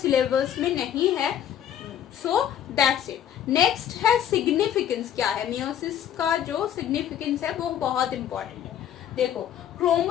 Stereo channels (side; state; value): right; quieter; 10.0 dB